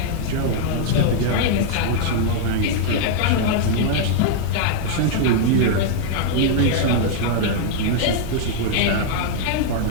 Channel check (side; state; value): both; different; correlation -0.01